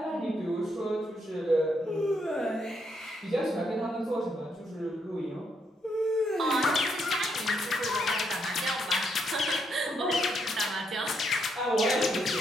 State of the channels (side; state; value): both; normal; correlation 0.76